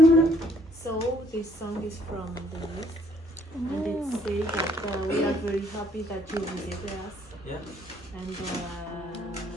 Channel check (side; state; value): both; normal; correlation 0.64